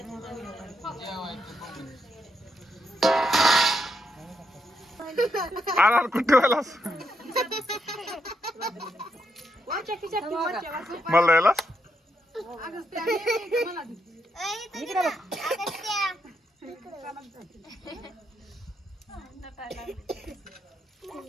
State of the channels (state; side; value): normal; both; correlation 0.80